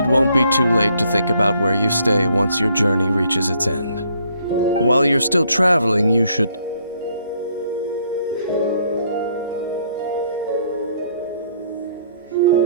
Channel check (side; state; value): both; inverted; correlation -0.67